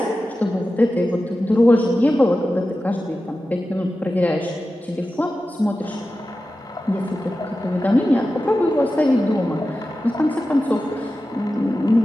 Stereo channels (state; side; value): normal; both; correlation 0.93